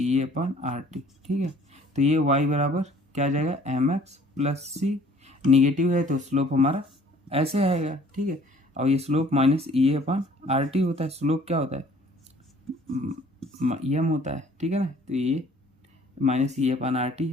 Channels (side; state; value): both; normal; correlation 0.55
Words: ठीक है, तो ये y बराबर क्या आ जाएगा, mx+c, निगेटिव है तो स्लोप हमारा ऐसे आएगा। ठीक है, और ये स्लोप माइनस E/RT होता है, स्लोप क्या होता है, m होता है। ठीक है ना, तो ये माइनस E/RT